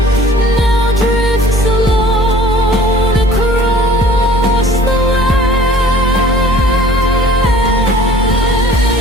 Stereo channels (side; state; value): both; normal; correlation 0.50